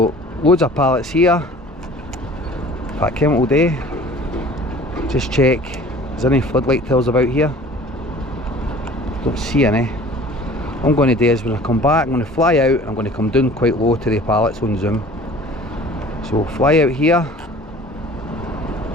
loads of pallets here. If I came all day, just check, is there any floodlight tails about here? Don't see any. What I'm going to do is when I come back, I'm going to fly out and I'm going to come down quite low to the pallets on zoom. So fly out here.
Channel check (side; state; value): both; normal; correlation 0.46